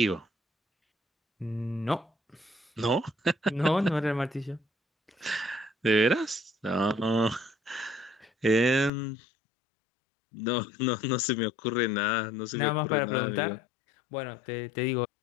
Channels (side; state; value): right; drops out; at 8.9 s